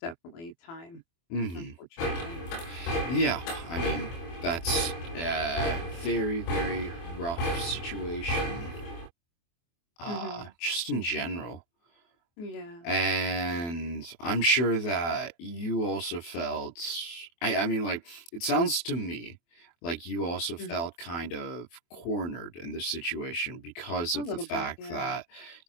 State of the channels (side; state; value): right; late; 24 ms